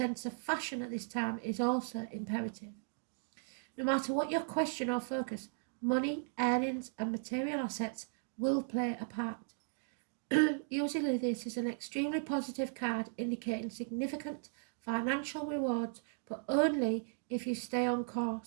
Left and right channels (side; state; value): left; silent; digital silence